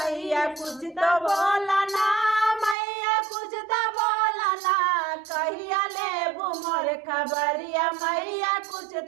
कुछ तो बोला ना। मैया कुछ तो बोला ना। कहिया ले मोर खबरिया मैया कुछ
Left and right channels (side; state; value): left; drops out; at 2.8 s